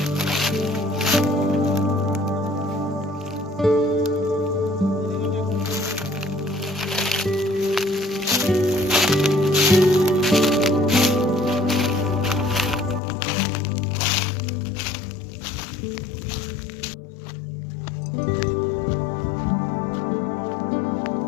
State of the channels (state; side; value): drops out; right; at 13.0 s